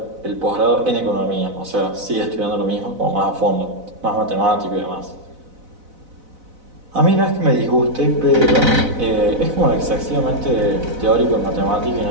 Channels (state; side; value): late; left; 4.0 ms